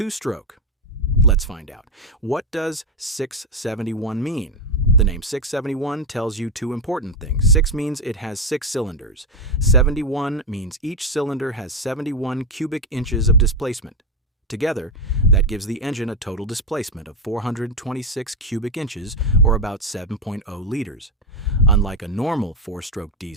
Let's find out. What does 671 mean? The name 671 tells you two important things. 6 means it has 6 cylinders. 71 means each cylinder has 71 cubic inches of displacement. Together, that gives the engine a total displacement of 426 cubic inches, or about 7.0 liters. Unlike a normal 4-stroke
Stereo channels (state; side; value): normal; both; correlation 0.07